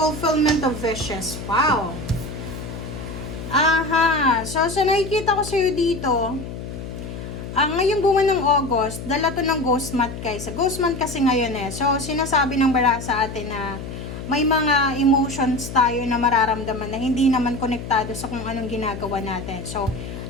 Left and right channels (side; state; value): left; noise; hum, 9 dB below the sound